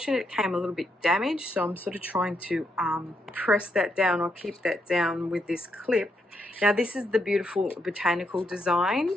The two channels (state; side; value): normal; both; correlation 0.79